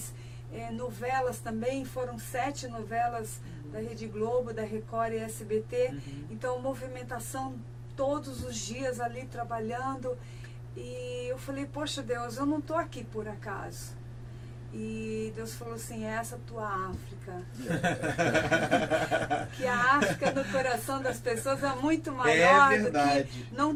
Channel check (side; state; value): both; identical; correlation 1.00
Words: novelas também, foram 7 novelas da Rede Globo, da Record e SBT, então movimentação todos os dias ali trabalhando, e eu falei, poxa Deus, eu não estou aqui por acaso. E Deus falou assim, essa é a tua África. Que a África no coração das pessoas é muito maior do que não